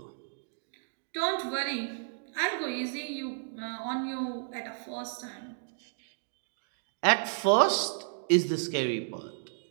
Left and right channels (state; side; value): silent; left; digital silence